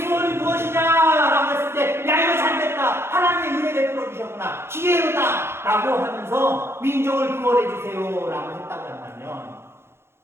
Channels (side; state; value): left; late; 0.12 ms